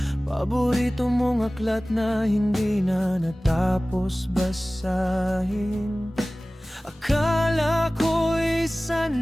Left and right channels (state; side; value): normal; both; correlation 0.98